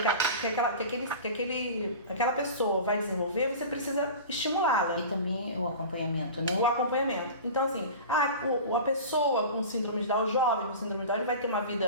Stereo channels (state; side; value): inverted; both; correlation -0.34